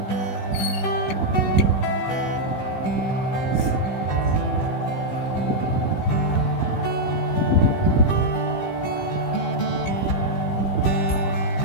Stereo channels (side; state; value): right; late; 16 ms